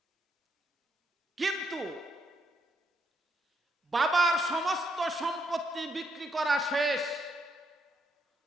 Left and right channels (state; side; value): normal; both; correlation 0.76